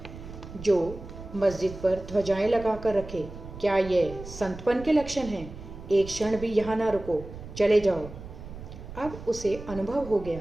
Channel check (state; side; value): noise; right; rumble, 13 dB below the sound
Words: जो मस्जिद पर ध्वजाएं लगा कर रखे? क्या ये संतपन के लक्षण हैं? एक क्षण भी यहाँ ना रुको, चले जाओ। अब उसे अनुभव हो गया